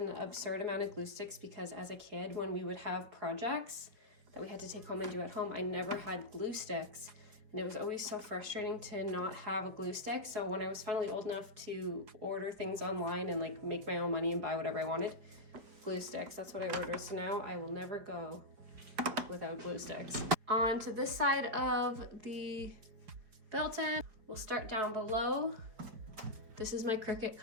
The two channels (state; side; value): late; left; 4.8 ms